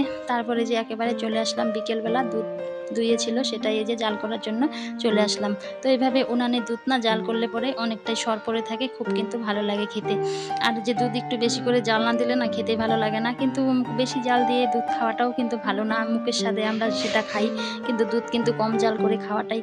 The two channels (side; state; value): both; identical; correlation 1.00